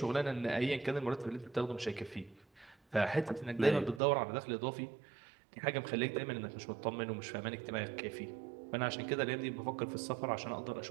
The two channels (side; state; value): left; drops out; at 4.0 s